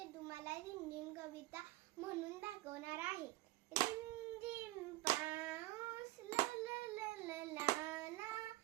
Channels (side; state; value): left; quieter; 19.3 dB